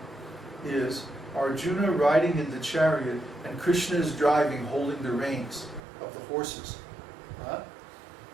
is Arjuna riding in the chariot and Krishna is driving, holding the reins of the horses.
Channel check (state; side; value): drops out; left; at 5.8 s